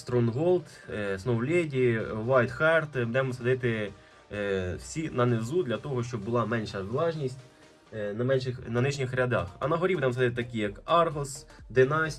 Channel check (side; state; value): both; identical; correlation 1.00